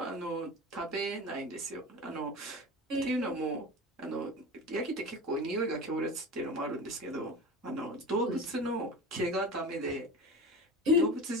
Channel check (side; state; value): both; normal; correlation 0.31